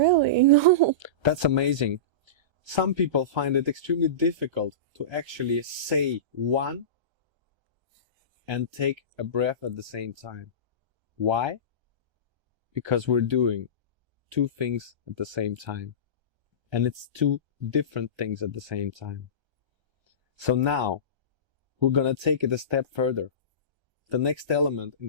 no. That's amazing. Some people find it extremely difficult to actually say 1 and take a breath at the same time. Why? Because we're doing 2 things at the same time. And it's 2 different things at the same time. So now, we're gonna take it a step further. The next element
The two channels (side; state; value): left; late; 1.3 ms